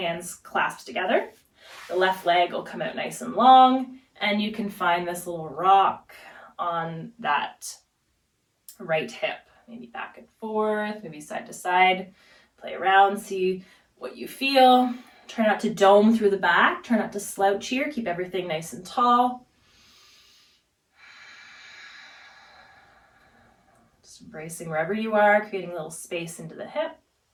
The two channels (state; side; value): identical; both; correlation 1.00